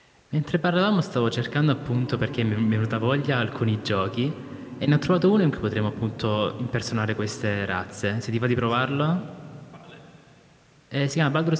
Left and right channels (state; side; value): identical; both; correlation 1.00